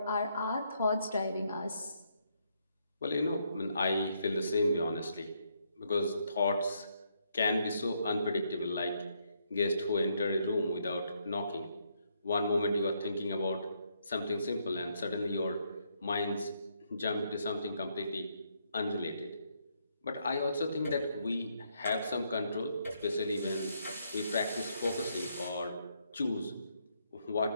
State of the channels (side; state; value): both; inverted; correlation -0.75